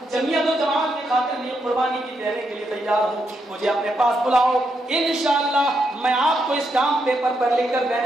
جمعیت و جماعت کی خاطر لیے قربانی کی دینے کے لیے تیار ہوں، مجھے اپنے پاس بلاؤ، انشاءاللہ میں آپ کو اس کام پیپر پر لکھ کر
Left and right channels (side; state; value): both; normal; correlation 0.81